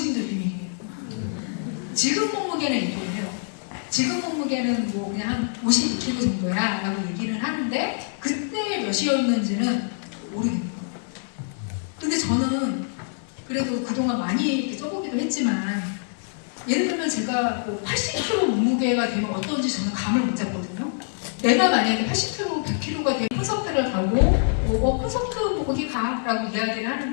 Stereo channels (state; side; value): silent; right; digital silence